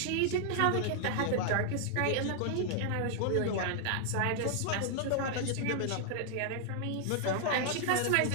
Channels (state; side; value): different; both; correlation 0.00